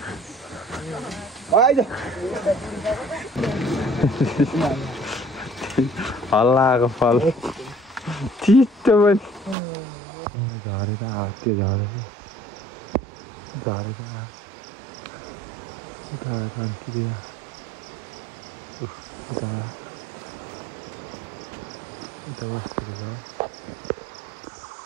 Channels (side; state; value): left; drops out; at 9.6 s